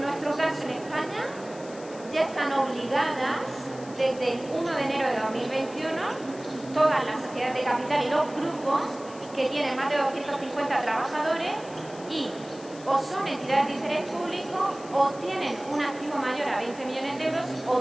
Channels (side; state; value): left; noise; hiss, 20 dB below the sound